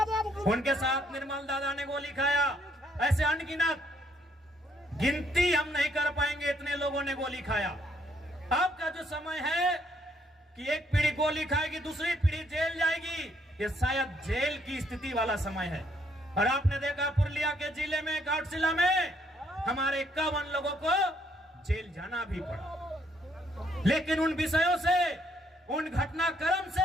उनके साथ निर्मल दादा ने गोली खाया। ऐसे अनगिनत, गिनती हम नहीं कर पाएंगे, इतने लोगों ने गोली खाया। अब का जो समय है कि एक पीढ़ी गोली खाएगी, दूसरी पीढ़ी जेल जाएगी, ये शायद जेल की स्थिति वाला समय है। और आपने देखा पुरुलिया के जिले में, घाटशिला में हमारे 51 लोगों को जेल जाना भी पड़ा। लेकिन उन विषयों से, उन घटनाक्रम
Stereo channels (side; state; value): both; normal; correlation 0.70